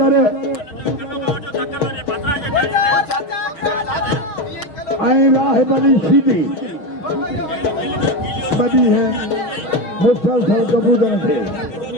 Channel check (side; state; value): right; late; 6.7 ms